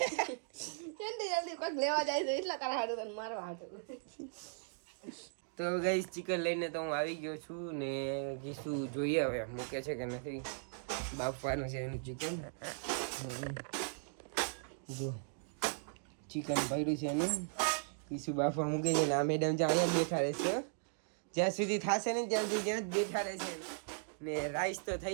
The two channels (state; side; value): silent; left; digital silence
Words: ચેન્ડુ જલ્દી કોક લેવા જાય છે એટલા કારણ હાડું તને મારવા હતો. તો ગાઈસ ચિકન લઈને તો હું આવી ગયો છું ને કીશું જોઈએ હવે મૂકે છે કે નથી. બાફવાનું છે એનું ચિકન. જો ચિકન પડ્યું છે ને કીશું બાફવા મૂકે છે ને આ મેડમ જ્યાં અહીંયા જ બેઠા રહેશે. જ્યાં સુધી થશે ને ત્યાં સુધી ત્યાં જ બેઠા રહેશે. ને રાઈસ તો